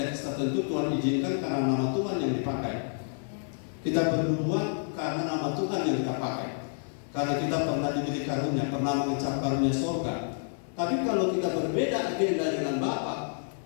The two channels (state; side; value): silent; right; 59 dB below the other